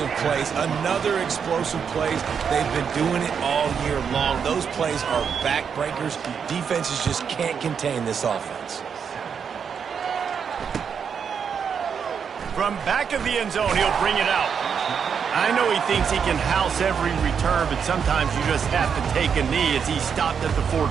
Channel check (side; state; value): left; quieter; 6.9 dB